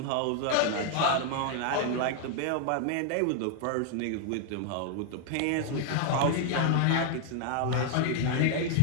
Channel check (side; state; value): both; different; correlation 0.00